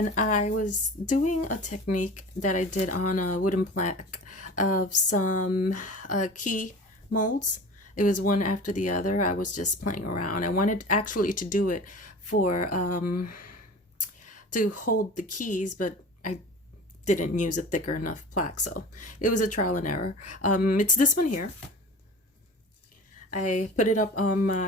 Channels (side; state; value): both; normal; correlation 0.38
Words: I was doing a technique that I did on a wooden plaque of some key molds. It was one after the other. I was just playing around. I wanted actually to do it for to hold the keys, but I didn't use a thicker enough plaque, so it was a trial and error. It's this one here. I put it up on